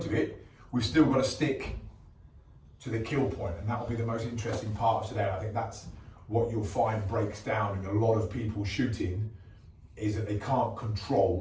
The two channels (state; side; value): identical; both; correlation 1.00